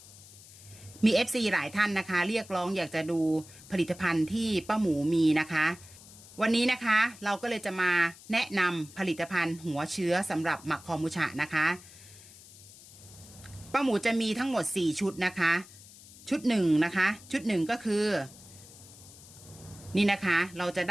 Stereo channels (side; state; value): left; noise; hiss, 20 dB below the sound